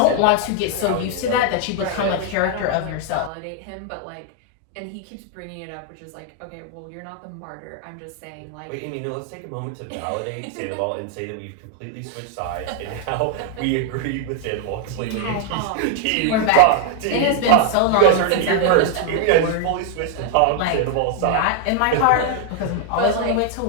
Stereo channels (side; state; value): both; different; correlation 0.00